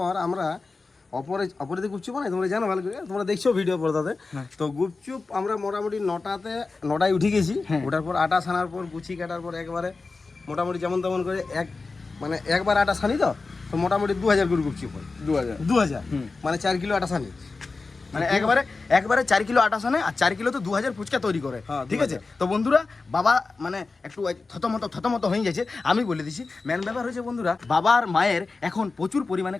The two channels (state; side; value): quieter; right; 3.9 dB